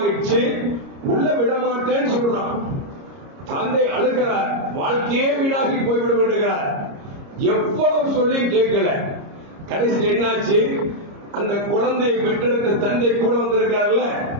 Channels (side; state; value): left; late; 30 ms